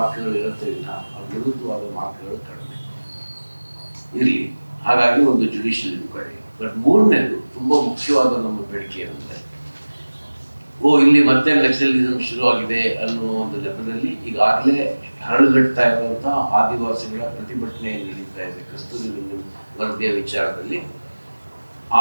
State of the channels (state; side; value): inverted; both; correlation -1.00